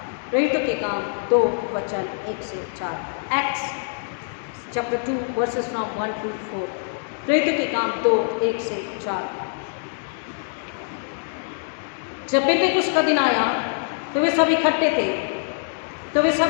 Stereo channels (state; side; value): silent; right; 60 dB below the other